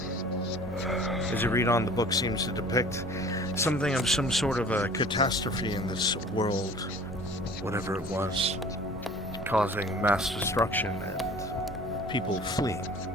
As you read on, the book seems to depict something of some sort of a catastrophe in this world, whatever it was, causing mass destruction and people fleeing.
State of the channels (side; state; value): both; normal; correlation 0.46